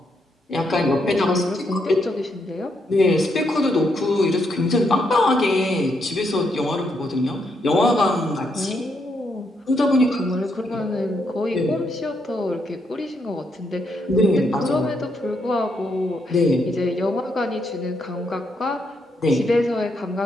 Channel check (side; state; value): both; normal; correlation 0.77